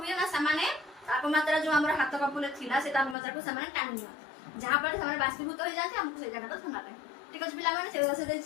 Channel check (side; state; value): right; drops out; at 3.2 s